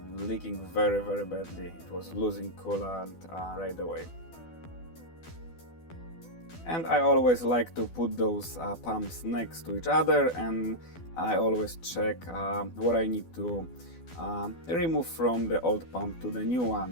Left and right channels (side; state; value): right; late; 12 ms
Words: leaking very badly. It was losing coolant right away. And I always like to put those pumps next to each other, and I always check what I need to remove from the old pump to the new